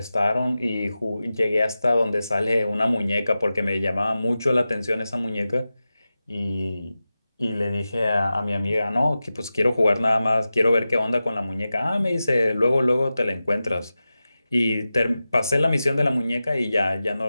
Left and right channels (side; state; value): both; inverted; correlation -0.94